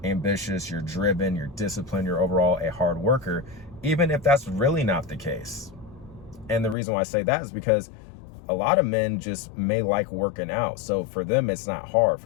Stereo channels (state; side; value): drops out; right; at 6.8 s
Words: ambitious, you're driven, you're disciplined, you're overall a hard worker, even if that's really not the case. And the reason why I say that is because a lot of men just may like working out. So for them, it's not hard.